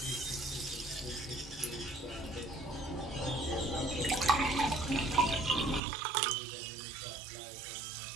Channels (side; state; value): left; drops out; at 5.8 s